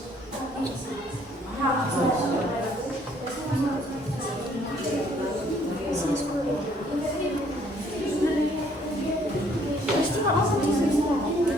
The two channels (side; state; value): both; normal; correlation 0.63